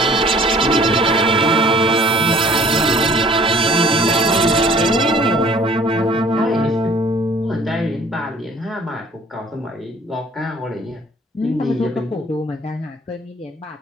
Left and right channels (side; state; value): both; normal; correlation 0.54